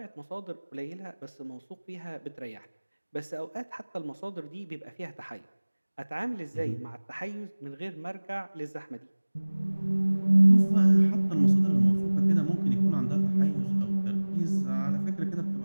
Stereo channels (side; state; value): both; inverted; correlation -1.00